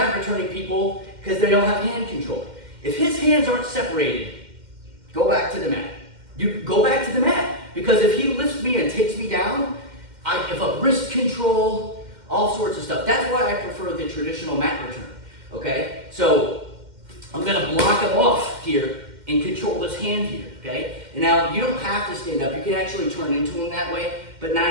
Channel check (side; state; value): left; late; 2.1 ms